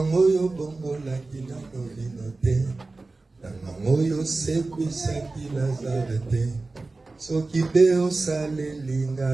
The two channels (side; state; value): left; quieter; 3.4 dB